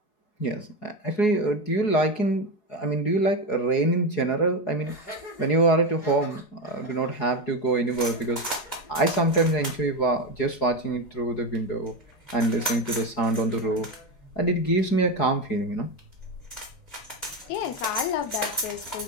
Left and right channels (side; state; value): right; late; 4.7 ms